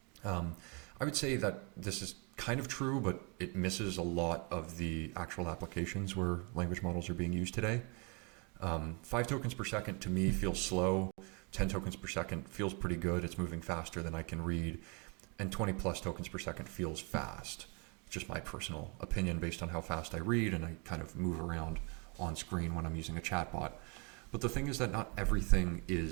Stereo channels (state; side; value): quieter; left; 31.3 dB